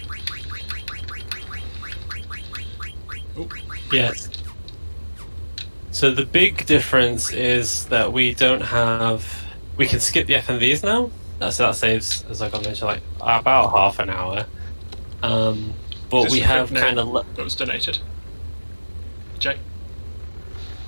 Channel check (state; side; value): inverted; both; correlation -1.00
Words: Oh. Yes. So the big difference is that we don't have... We can skip the FMVs now, so that saves, as I mentioned, like about half an hour. But we have kind of... That was donated. Jay?